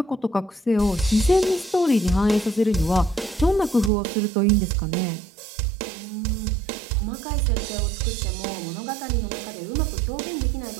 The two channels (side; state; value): left; drops out; at 3.9 s